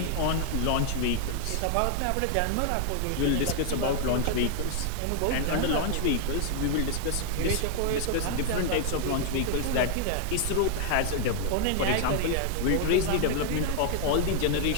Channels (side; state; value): both; different; correlation 0.00